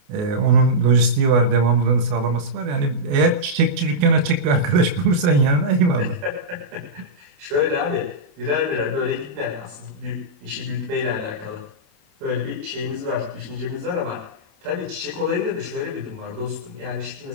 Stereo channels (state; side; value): late; left; 28 ms